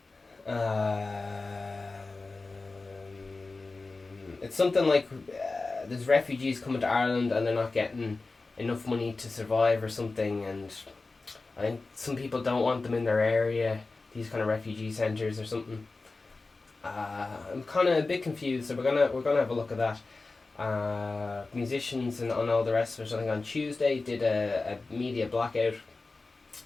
It's something like there's refugees coming to Ireland and they're not getting enough money to survive or something, and I think some people don't want them in their area, these kind of refugee centres or something. I'm kind of a bit confused, so we're gonna have a look at that. Musicians and all the rest of it, I think on Tuesday did a media blackout,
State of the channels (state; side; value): quieter; right; 3.6 dB